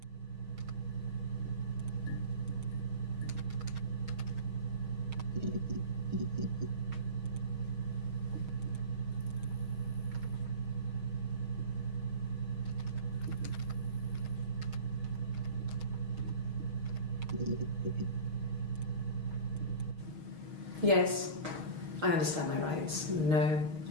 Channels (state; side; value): late; left; 6.4 ms